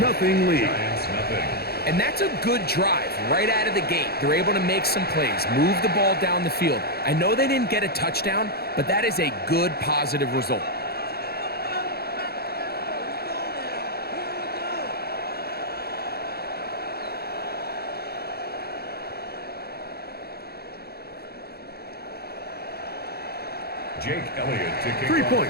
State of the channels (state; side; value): late; right; 0.46 ms